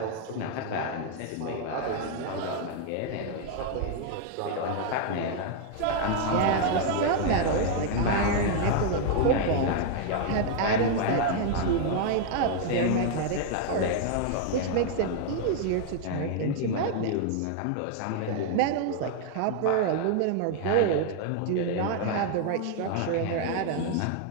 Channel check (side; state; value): both; different; correlation 0.00